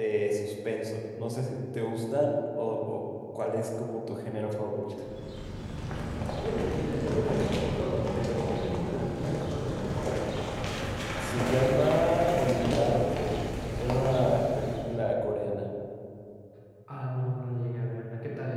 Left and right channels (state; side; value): identical; both; correlation 1.00